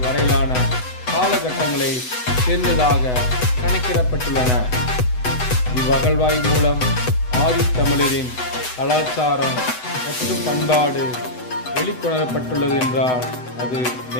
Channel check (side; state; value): right; late; 8.0 ms